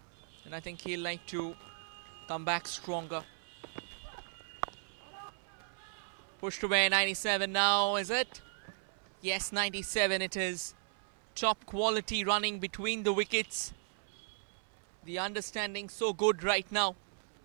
and I think he'll like to come back stronger. Pushed away, 97 now, is it? Yes, 97 it is. Top quality running between the wickets. The understanding so good right now.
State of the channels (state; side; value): silent; left; 54 dB below the other